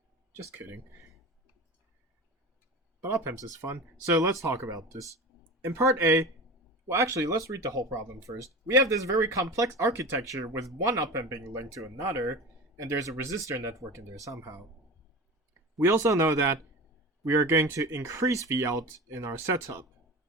Just kidding. But op-amps is fun, so let's talk about this. In part A, well actually, let's read the whole problem first. We have this very complex architecture with one op-amp being linked to another, and there's a resistor network in there somehow. We also know that we are going to increase Vout in our setup,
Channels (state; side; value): normal; both; correlation 0.31